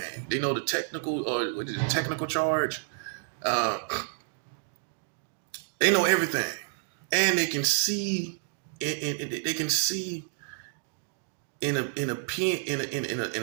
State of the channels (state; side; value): silent; left; digital silence